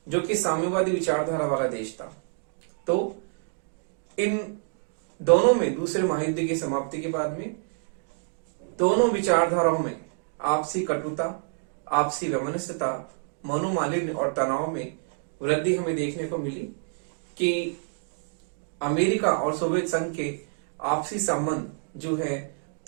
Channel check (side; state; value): left; silent; digital silence